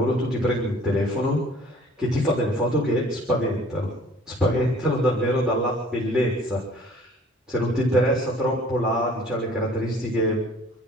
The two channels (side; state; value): both; normal; correlation 0.52